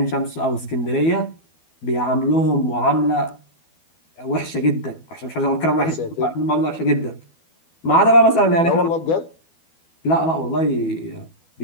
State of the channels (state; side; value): late; right; 12 ms